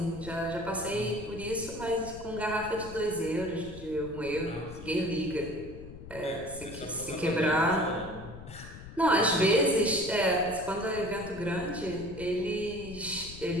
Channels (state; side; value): noise; left; rumble, 14 dB below the sound